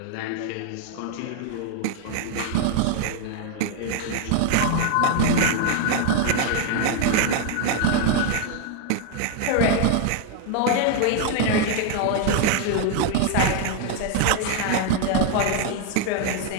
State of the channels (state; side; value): different; both; correlation 0.00